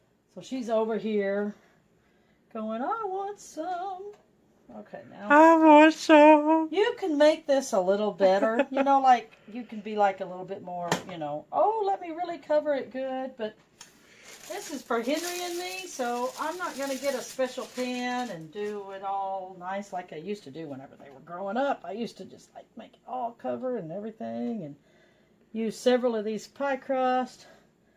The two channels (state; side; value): identical; both; correlation 1.00